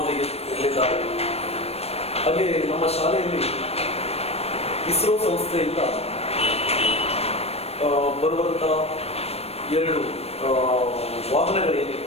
ಇರಲಿದ್ದಾರೆ. ಹಾಗೆ ನಮ್ಮ ಶಾಲೆಯಲ್ಲಿ ಇಸ್ರೋ ಸಂಸ್ಥೆಯಿಂದ ಬರುವಂಥ 2 ವಾಹನಗಳೇನಿವೆ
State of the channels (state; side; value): late; right; 0.29 ms